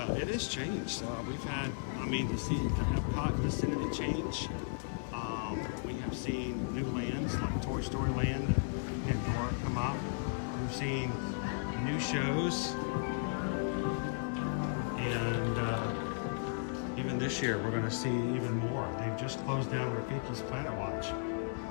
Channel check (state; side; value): silent; right; digital silence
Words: it has changed. We've had, to see the Epcot vicinity change. We have seen new lands like Toy Story Land and Pandora come up. We've seen new shows, and even this year we're going to see even more. They've just closed down Rafiki's Planet Watch